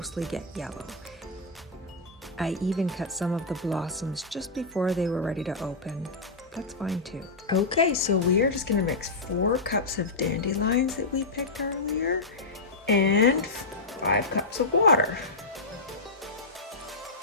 get yellow. I even cut some of the blossoms just before they were ready to open. That's fine too. Okay, so we are just gonna mix 4 cups of dandelions that we picked earlier and 5 cups of water.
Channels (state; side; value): quieter; right; 3.4 dB